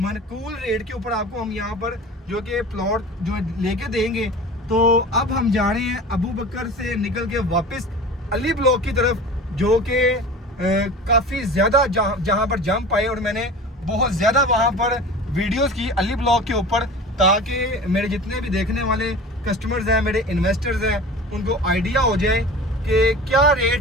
रेट के ऊपर आपको हम यहाँ पर जो कि प्लॉट जो लेके देंगे। तो अब हम जा रहे हैं अबू बकर से निकल के वापस अली ब्लॉक की तरफ, जो कि काफ़ी ज़्यादा जहाँ पर जंप आए और मैंने बहुत ज़्यादा वहाँ पर वीडियोस की अली ब्लॉक के ऊपर, ताकि मेरे जितने भी देखने वाले कस्टमर्स हैं, मेरे इन्वेस्टर्स हैं, उनको आइडिया हो जाए कि क्या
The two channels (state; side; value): normal; both; correlation 0.37